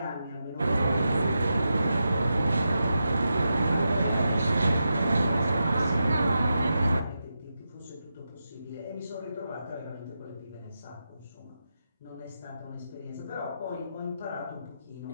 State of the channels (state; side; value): inverted; both; correlation -0.88